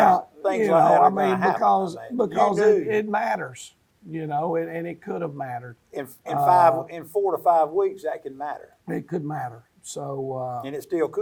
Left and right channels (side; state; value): both; identical; correlation 1.00